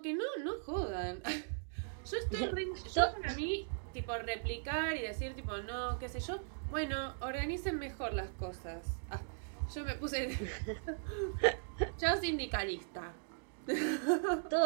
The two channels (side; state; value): left; silent; digital silence